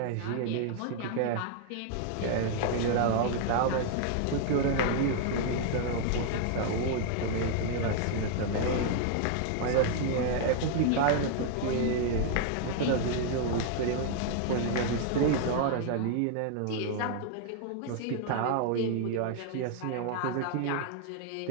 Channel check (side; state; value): both; different; correlation 0.00